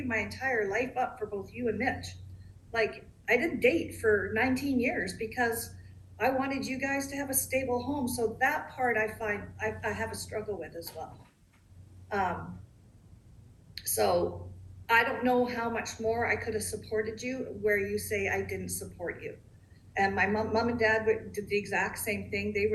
my entire life up for both you and Mitch. Like, I didn't date for 19 years because I wanted you guys to have a stable home. So that part I find I have a struggle with as well. Um, so I don't know how much more I could have supported you where you say I didn't support you. And my mom and dad did the exact same thing. They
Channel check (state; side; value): identical; both; correlation 1.00